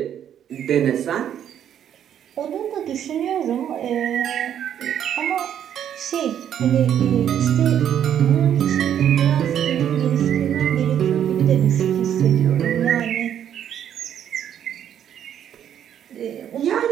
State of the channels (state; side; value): quieter; left; 9.7 dB